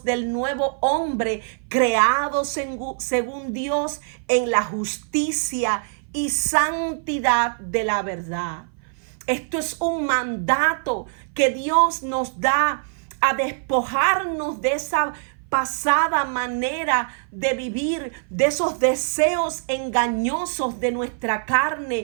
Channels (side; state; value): left; silent; 58 dB below the other